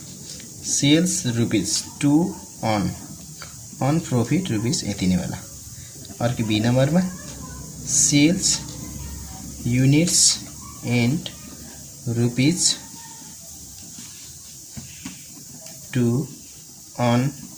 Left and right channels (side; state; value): both; identical; correlation 1.00